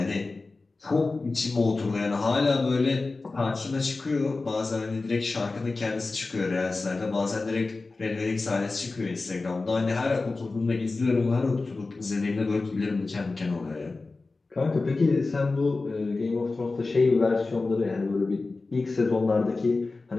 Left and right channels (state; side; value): quieter; right; 3.6 dB